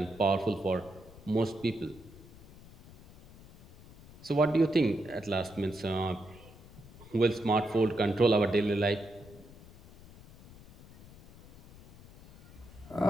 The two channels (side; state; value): left; noise; rumble, 20 dB below the sound